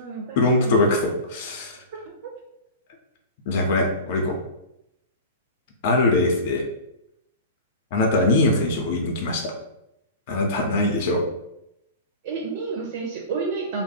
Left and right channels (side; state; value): both; inverted; correlation -0.33